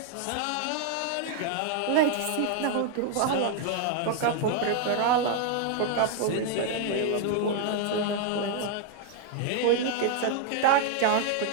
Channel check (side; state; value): both; different; correlation 0.00